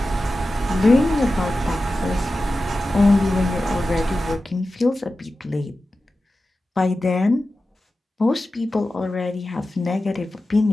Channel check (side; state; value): both; normal; correlation 0.94